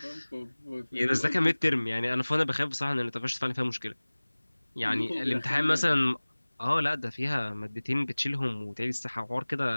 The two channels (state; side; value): inverted; both; correlation -1.00